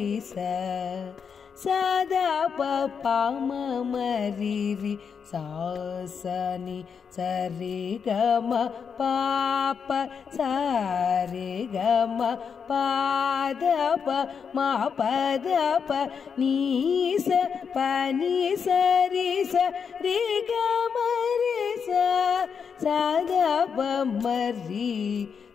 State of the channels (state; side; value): quieter; right; 6.5 dB